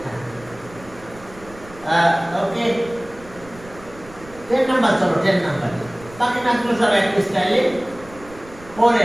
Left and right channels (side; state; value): right; noise; rumble, 20 dB below the sound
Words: ওকে 10 নাম্বার চলো 10 নাম্বার বাকি ম্যাথগুলো সব একই স্টাইলে